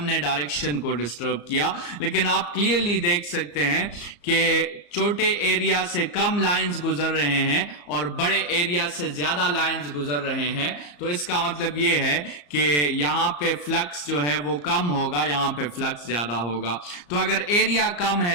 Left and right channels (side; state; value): right; late; 34 ms